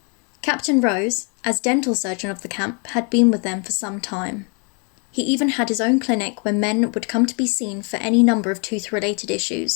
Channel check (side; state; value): right; quieter; 36.1 dB